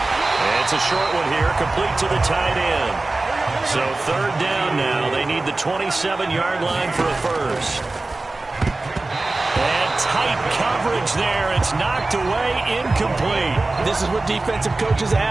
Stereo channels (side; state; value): left; quieter; 3.1 dB